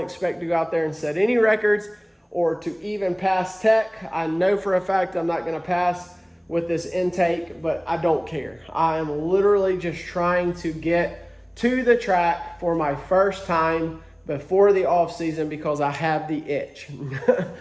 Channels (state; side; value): identical; both; correlation 1.00